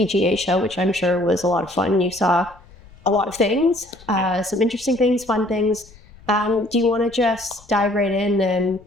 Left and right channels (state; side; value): noise; left; rumble, 24 dB below the sound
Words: Show, which I'm sure was a lot of fun. You saw a lot of things, some interesting things, fun things. Do you want to just dive right in and